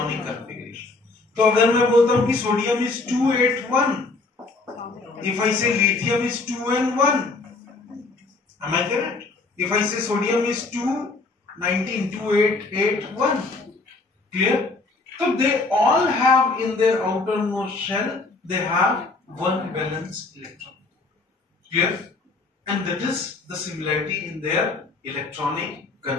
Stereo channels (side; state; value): right; quieter; 3.6 dB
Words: configuration. तो अगर मैं बोलता हूं कि सोडियम इज 281, इफ आई से lithium is 2 and 1, am I correct? If I say sodium is 219, 2881, clear? So they all have in their outermost shell, they have one valence electron. Clear? And that is the similarity in their electronic